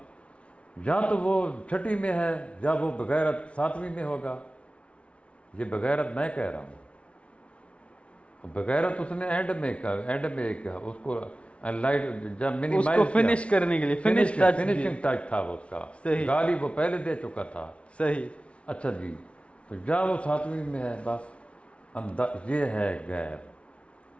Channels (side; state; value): right; late; 0.061 ms